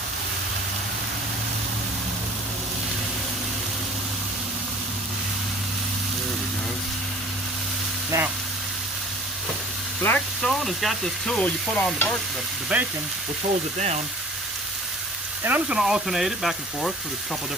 Now, Blackstone has got this tool you put on the bacon, which holds it down. And I'm just going to alternate it back and forth with a couple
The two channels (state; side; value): normal; both; correlation 0.47